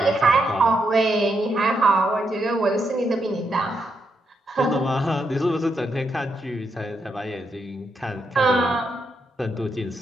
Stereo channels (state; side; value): normal; both; correlation 0.81